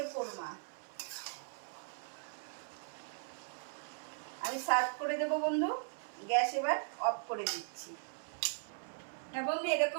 কোরমা আমি সার্ভ করে দেব বন্ধু। গ্যাস এবার অফ করে দিচ্ছি। হ্যাঁ বন্ধু,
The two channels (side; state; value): left; silent; 52 dB below the other